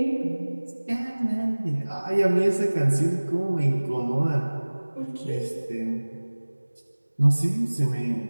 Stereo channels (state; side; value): inverted; both; correlation -1.00